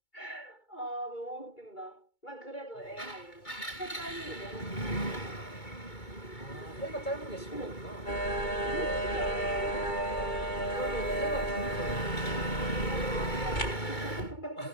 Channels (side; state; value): right; late; 2.2 ms